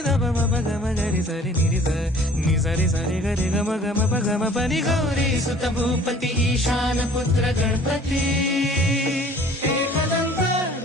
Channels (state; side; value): normal; both; correlation 0.51